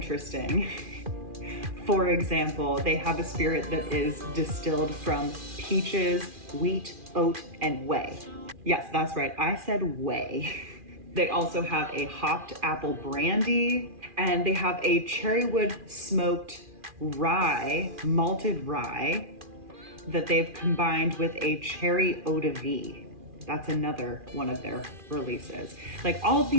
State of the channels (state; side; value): late; left; 2.4 ms